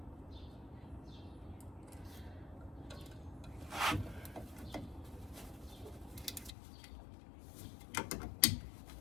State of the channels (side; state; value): right; drops out; at 6.5 s